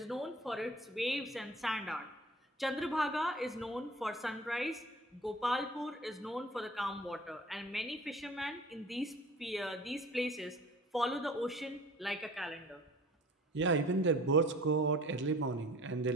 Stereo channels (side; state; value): both; normal; correlation 0.46